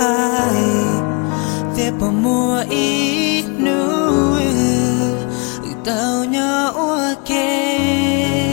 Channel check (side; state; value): right; quieter; 32.0 dB